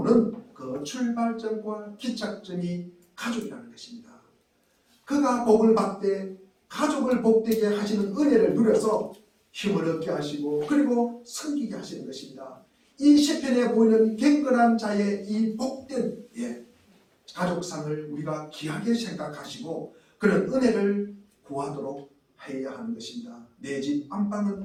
그 출발점과 기착점이 가족이라는 것입니다. 그가 복을 받되 가족을 복되게 하시는 은혜를 누려서 힘을 얻게 하시고 그리고 섬기게 하시는 것입니다. 이 시편에 보이는 경건한 자의 이 복된 가족상을 우리가 귀하게 생각하시고 그런 은혜를 구하도록 해야 하는 것입니다. 내 집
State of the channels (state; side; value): identical; both; correlation 1.00